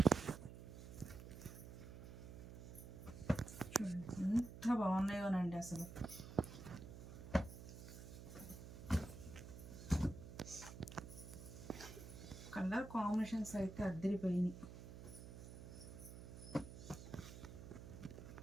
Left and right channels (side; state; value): right; noise; hum, 12 dB below the sound